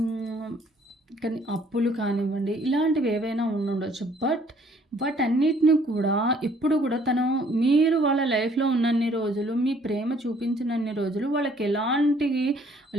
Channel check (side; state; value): both; normal; correlation 0.61